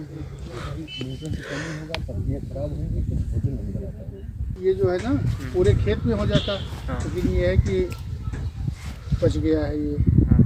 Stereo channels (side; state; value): both; identical; correlation 1.00